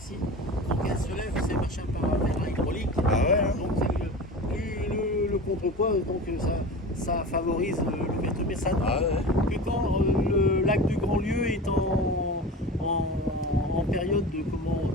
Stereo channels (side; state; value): both; normal; correlation 0.32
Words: Donc elles se lèvent, c'est machin par hydraulique. Bah ouais. Hein. Donc plus contrepoids, donc ça favorise l'ouverture. Mais ça Ah ouais. que quand le lac du Grand-Lieu est en période de